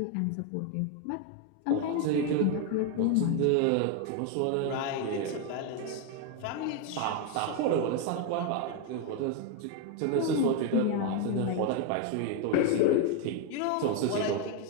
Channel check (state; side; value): different; both; correlation 0.01